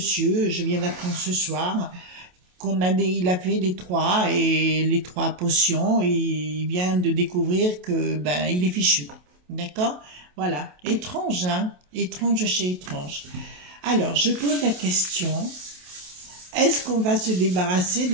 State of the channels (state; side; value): late; left; 28 ms